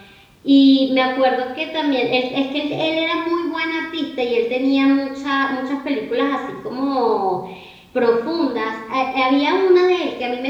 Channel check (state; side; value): identical; both; correlation 1.00